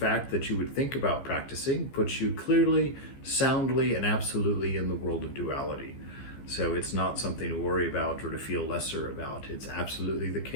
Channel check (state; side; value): late; right; 15 ms